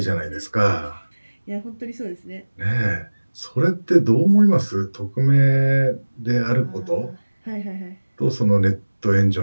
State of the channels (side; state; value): both; inverted; correlation -1.00